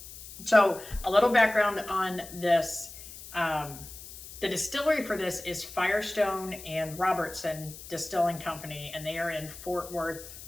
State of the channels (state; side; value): noise; left; hiss, 14 dB below the sound